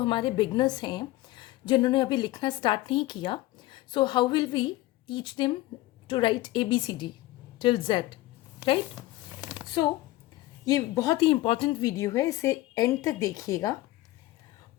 हमारे बिगनर्स हैं जिन्होंने अभी लिखना स्टार्ट नहीं किया, so how will we teach them to write ABCD till Z, right? So ये बहुत ही इम्पॉर्टेंट वीडियो है, इसे एंड तक देखिएगा.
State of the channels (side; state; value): right; quieter; 17.4 dB